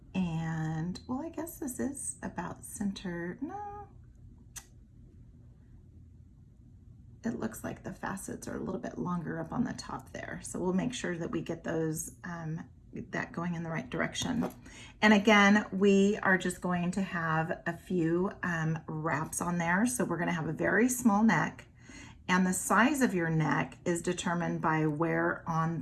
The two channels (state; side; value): identical; both; correlation 1.00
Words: And, well, I guess this is about center. No. It looks like the facets are a little bit longer up on the top there. So we'll make sure that we get those, that going in the right direction. And again, we are just going to have a few wraps on there. So we're going to have a very small neck. And the size of your neck is determined by where on